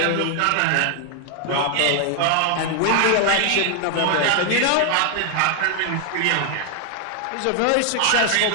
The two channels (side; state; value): both; different; correlation 0.00